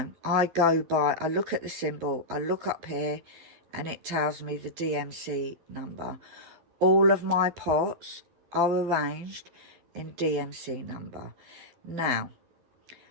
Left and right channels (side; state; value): left; late; 12 ms